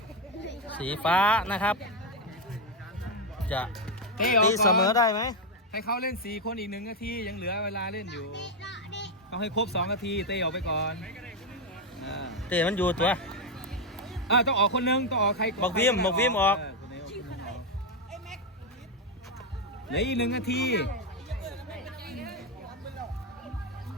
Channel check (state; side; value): normal; both; correlation 0.05